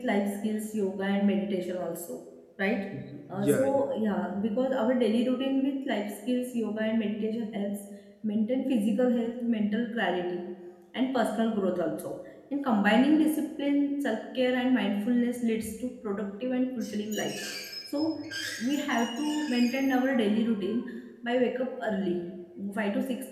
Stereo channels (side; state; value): both; identical; correlation 1.00